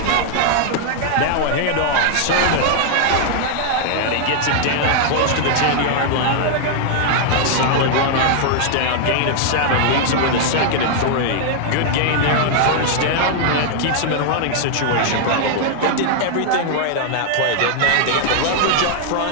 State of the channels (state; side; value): different; both; correlation 0.00